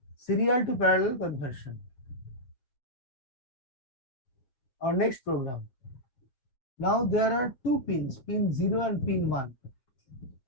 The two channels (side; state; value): right; late; 7.8 ms